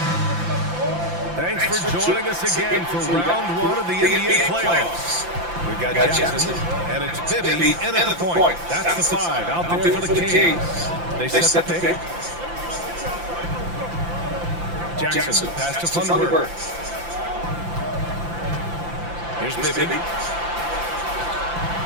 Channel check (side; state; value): left; late; 5.8 ms